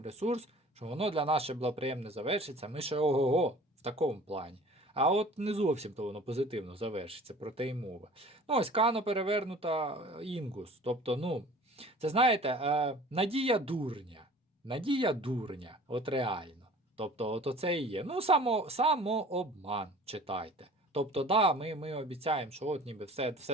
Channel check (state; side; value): normal; both; correlation 0.46